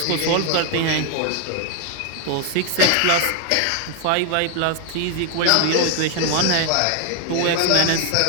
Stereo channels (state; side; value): different; both; correlation 0.00